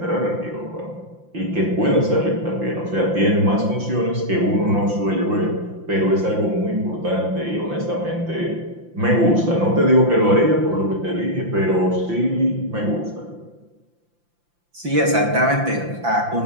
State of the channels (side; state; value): left; late; 5.8 ms